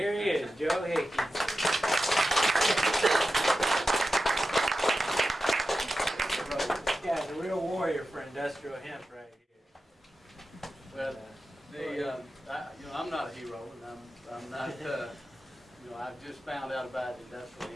he is, Joe Hickey. This guy's a real warrior for industrial hemp right here. Well, I'm not a hero, and I'm not. I've just found out about industrial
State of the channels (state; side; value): normal; both; correlation 0.92